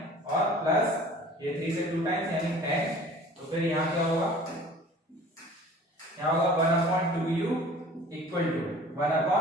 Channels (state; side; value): normal; both; correlation 0.46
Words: और प्लस ये 3 से 2 टाइम्स यानी 10, तो फिर यहाँ क्या होगा 1/2u इक्वल टू